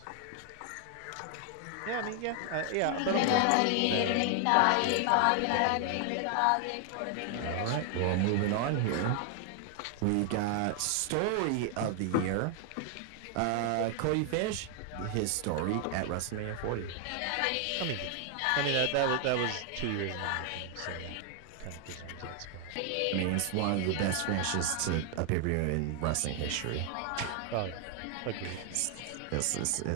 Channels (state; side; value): different; both; correlation 0.00